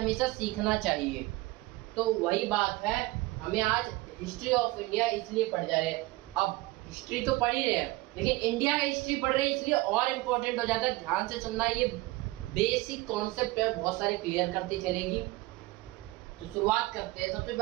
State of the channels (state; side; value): quieter; left; 20.4 dB